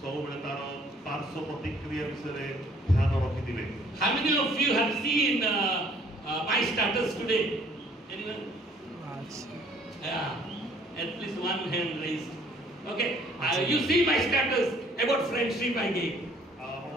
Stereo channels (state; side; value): normal; both; correlation 0.60